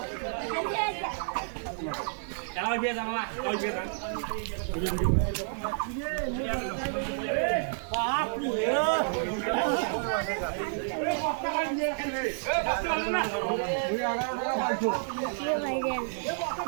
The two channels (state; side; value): silent; left; 58 dB below the other